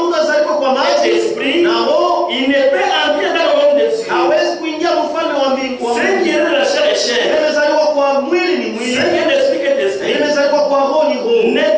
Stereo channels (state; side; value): identical; both; correlation 1.00